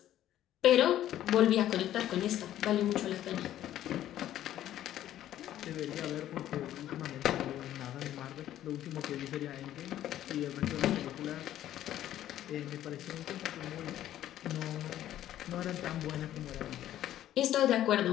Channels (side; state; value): right; quieter; 12.4 dB